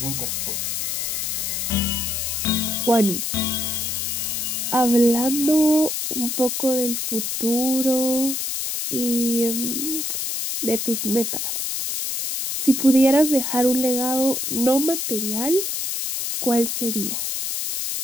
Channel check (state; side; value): noise; left; hiss, 2 dB below the sound